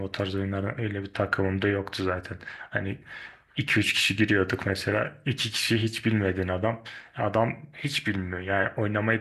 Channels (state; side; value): identical; both; correlation 1.00